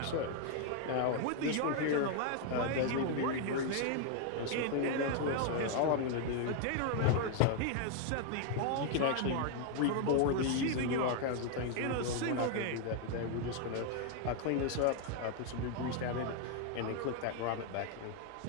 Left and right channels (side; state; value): both; different; correlation 0.00